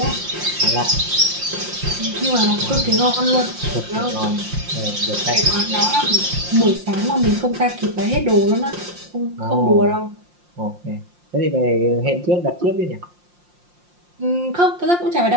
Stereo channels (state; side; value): late; left; 5.7 ms